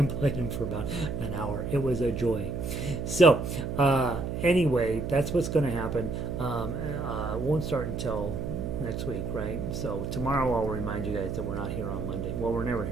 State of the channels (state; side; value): noise; right; hum, 4 dB below the sound